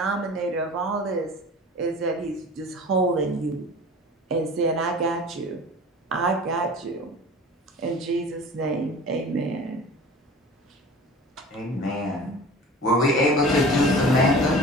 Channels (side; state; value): both; normal; correlation 0.40